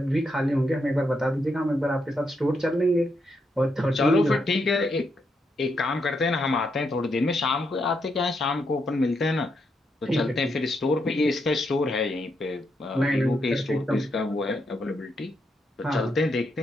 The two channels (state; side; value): normal; both; correlation 0.80